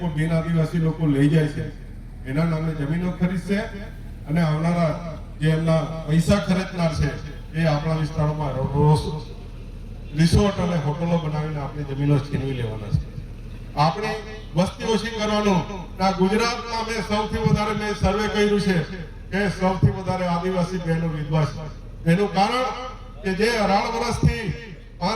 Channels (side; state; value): both; identical; correlation 1.00